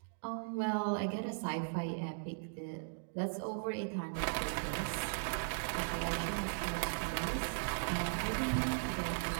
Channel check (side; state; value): left; silent; digital silence